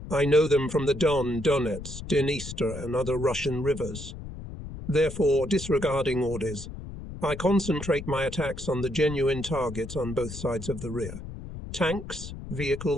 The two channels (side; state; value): left; noise; rumble, 10 dB below the sound